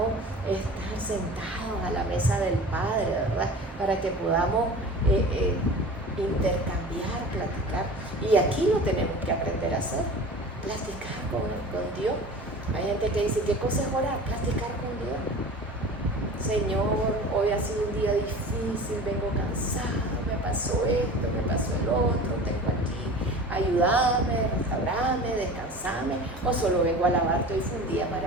estar sentados a la mesa del Padre, ¿verdad? Para que podamos intercambiar, platicar. Y aquí lo tenemos que aprender a hacer, platicar con Dios. Hay gente que dice, ¿qué cosa es orar? Platicar con Dios. Señor, hoy ha sido un día difícil, vengo cansado, me pasó esto, me pasó el otro, tengo aquí, ayúdame, restaurame, descansame, o solo vengo a alabarte, hoy fue un día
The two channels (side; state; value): both; normal; correlation 0.38